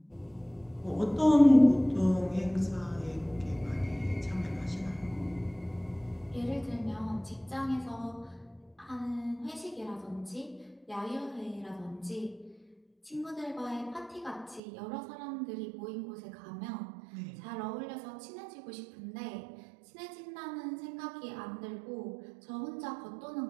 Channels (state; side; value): drops out; left; at 14.6 s